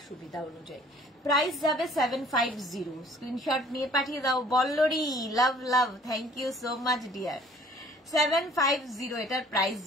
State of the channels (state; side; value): normal; both; correlation 0.55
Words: সুবিধা অনুযায়ী। প্রাইস যাবে 750, স্ক্রিনশট নিয়ে পাঠিয়ে দাও। Ballari, love love, thank you so much dear. 750 এটার প্রাইস